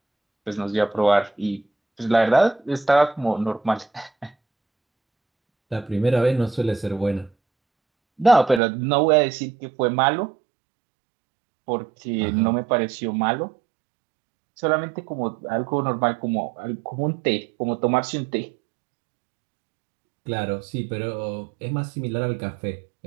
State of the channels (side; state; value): left; drops out; at 8.6 s